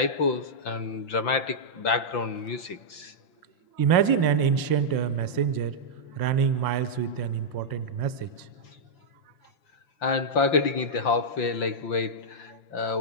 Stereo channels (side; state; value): right; late; 5.6 ms